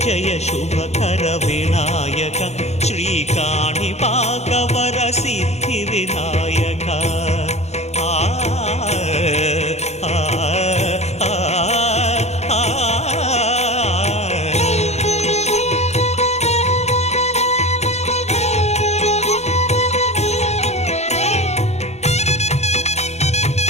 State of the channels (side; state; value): right; late; 0.32 ms